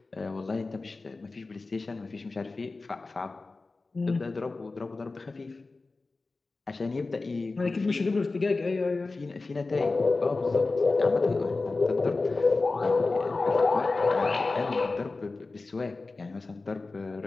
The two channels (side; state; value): right; quieter; 3.6 dB